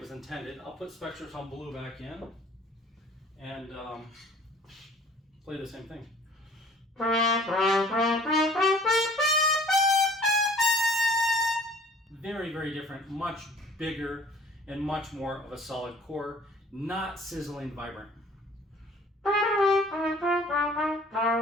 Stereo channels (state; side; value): normal; both; correlation 0.52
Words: was intended. I'll put Spectrotone Blue back in and play the same thing. Very, very different, much bigger and much more of a solid core, not sizzling vibrant.